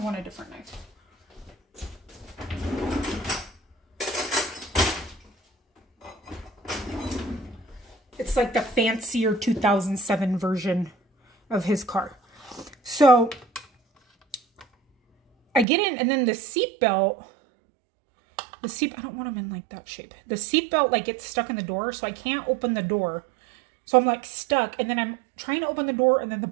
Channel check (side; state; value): left; drops out; at 15.7 s